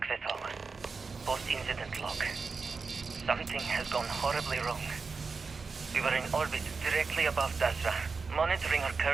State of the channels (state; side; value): quieter; left; 4.6 dB